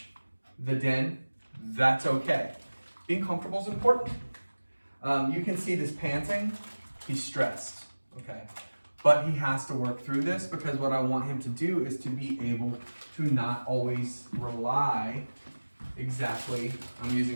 the den. That's okay. Being comfortable is important. You can see this panting. He's stressed, okay? But he has to work through this because what I want him to do is to be able to not always rely exactly, I'm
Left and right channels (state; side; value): inverted; both; correlation -1.00